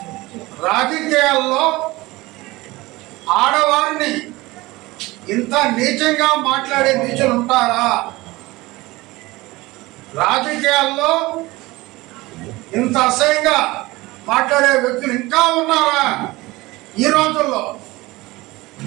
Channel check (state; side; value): quieter; left; 20.6 dB